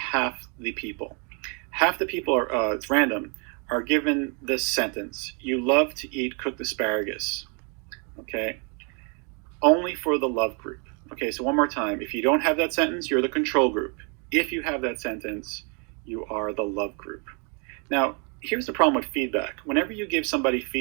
the people. Half the people are, it's random, are given this sentence: "You love to eat cooked asparagus." Okay? Only for the love group. Okay, so one more time. If you don't have that sentence, you're the control group. If you have that sentence, you are the love group. Now, here's the problem with feedback. Whenever you give somebody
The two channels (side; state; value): left; quieter; 36.0 dB